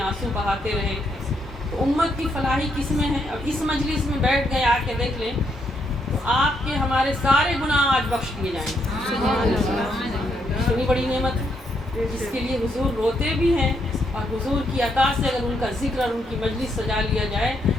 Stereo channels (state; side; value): normal; both; correlation 0.76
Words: آنسو بہاتے رہے۔ تو امت کی فلاحی کس میں ہے؟ اب اس مجلس میں بیٹھ گئے، آ کے دیکھ لیں تو آپ کے ہمارے سارے گناہ آج بخش دیے جائیں گے۔ اتنی بڑی نعمت ہے جس کے لیے حضور روتے بھی ہیں، اور حضور کی عطا سے اگر ان کا ذکر اور ان کی مجلس سجا لیا جائے